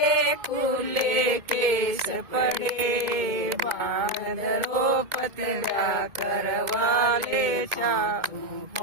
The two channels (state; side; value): late; left; 2.2 ms